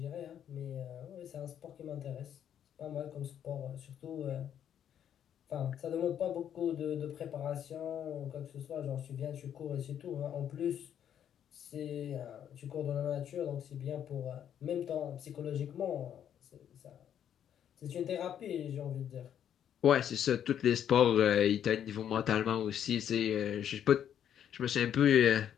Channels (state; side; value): quieter; right; 9.6 dB